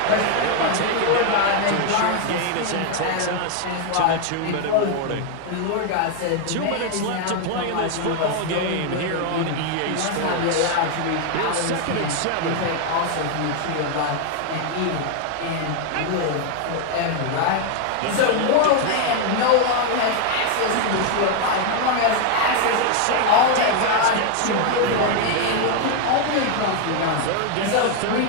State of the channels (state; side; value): different; both; correlation 0.00